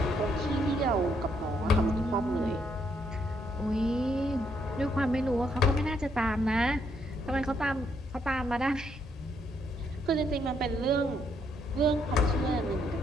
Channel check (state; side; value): normal; both; correlation 0.73